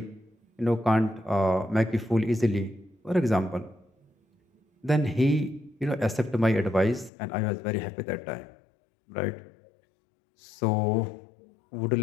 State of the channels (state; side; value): drops out; right; at 7.1 s